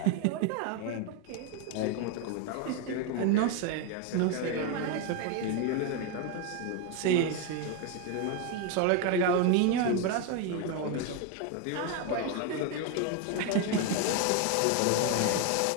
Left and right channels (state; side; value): different; both; correlation 0.01